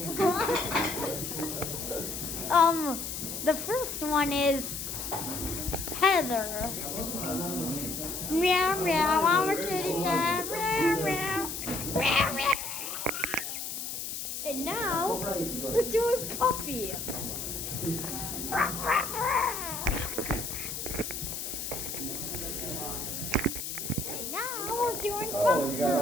The first one is Heather. Meow meow, I'm a kitty cat. Meow meow, meow meow. And now we're doing Puppy. And now we're doing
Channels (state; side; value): noise; left; hiss, 5 dB below the sound